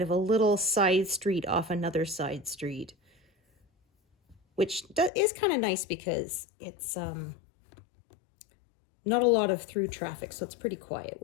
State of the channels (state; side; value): drops out; right; at 5.1 s